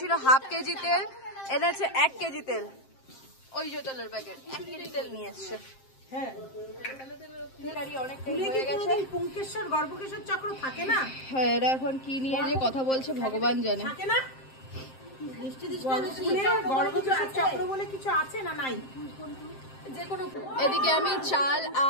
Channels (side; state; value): right; late; 7.6 ms